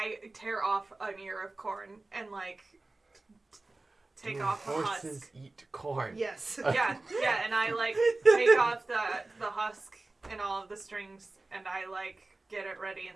tear off an ear of corn and like take Do off the horses husk. eat corn? Yes. Yeah, and I like take off the husk and all of the strings, and I like get it ready,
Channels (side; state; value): left; quieter; 3.1 dB